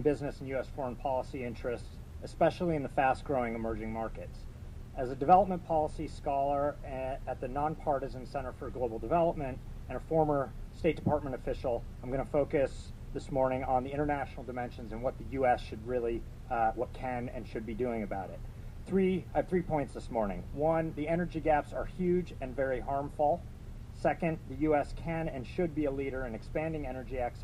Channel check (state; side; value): identical; both; correlation 1.00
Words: business and U.S. foreign policy interests, especially in the fast-growing emerging markets. As a development policy scholar at the Nonpartisan Center for Global Development and a former State Department official, I'm going to focus this morning on the international dimensions and what the U.S. should really, what can and should be doing about it. I have 3 points this morning. One, the energy gaps are huge and very harmful. Second, the U.S. can and should be a leader in expanding energy